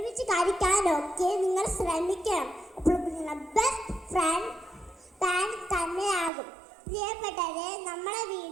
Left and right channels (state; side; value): drops out; left; at 6.3 s